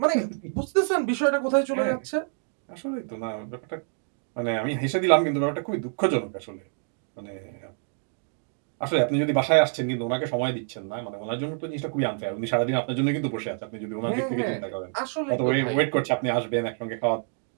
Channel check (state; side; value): silent; left; 59 dB below the other